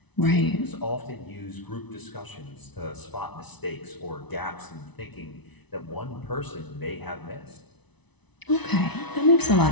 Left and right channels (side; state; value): right; late; 1.0 ms